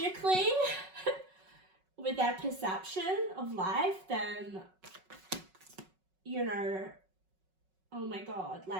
with that perception of life, then, you know, oh my god,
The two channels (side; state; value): left; late; 5.4 ms